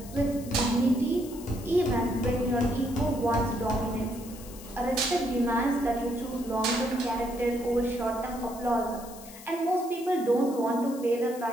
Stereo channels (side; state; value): left; noise; hiss, 17 dB below the sound